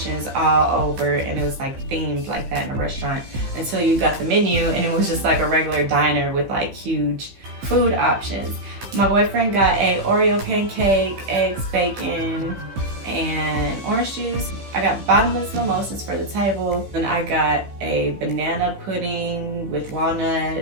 all over, and it was like themed like that in a restaurant until you got the menu, and it was just like a regular diner with like huge food options. My boyfriend got a Oreo pancake, eggs, bacon, and orange juice. I got bottomless mimosas for the table, and I got a banana pudding with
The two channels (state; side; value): late; left; 15 ms